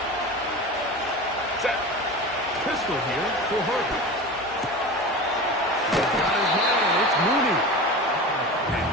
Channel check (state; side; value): normal; both; correlation 0.30